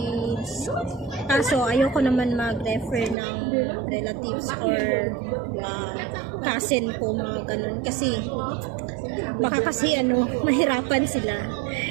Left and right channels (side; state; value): left; drops out; at 3.2 s